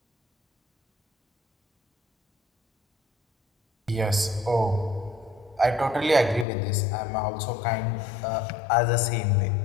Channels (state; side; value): drops out; right; at 6.5 s